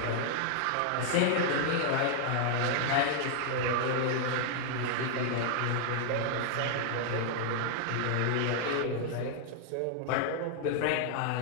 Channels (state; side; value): different; both; correlation -0.01